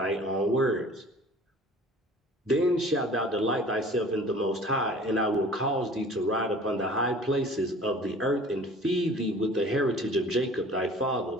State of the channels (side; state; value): both; normal; correlation 0.47